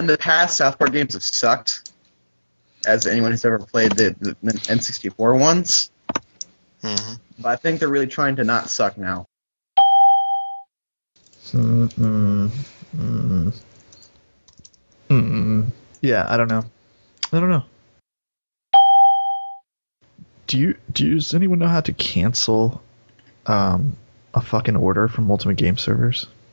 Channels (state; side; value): inverted; both; correlation -1.00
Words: the past, South Park games have sucked. As anyone who's ever played the N64 ones. Mm-hmm. But I think they're really trying to not suck now. Yeah, I don't know. Does anyone know how to cancel a fucking order from Ultimate Game Servers?